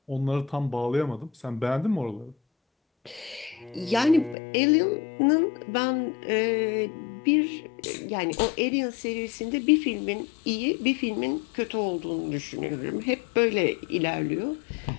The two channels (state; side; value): drops out; right; at 4.4 s